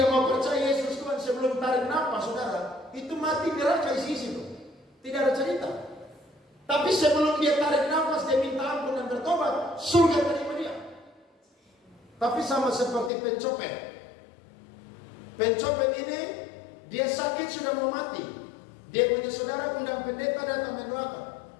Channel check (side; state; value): right; drops out; at 13.1 s